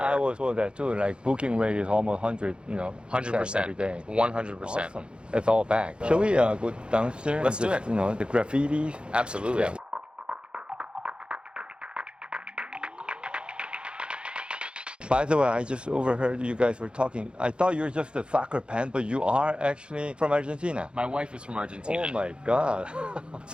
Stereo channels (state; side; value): late; left; 0.055 ms